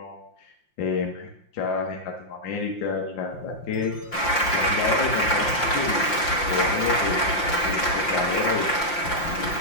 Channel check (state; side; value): late; right; 5.7 ms